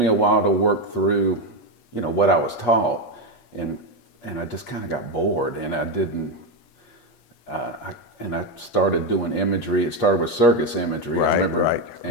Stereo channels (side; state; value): right; late; 8.4 ms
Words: a while to work through, what I was taught, and I just kind of got bored, and I didn't. I started doing imagery. It started with circus imagery. I remember,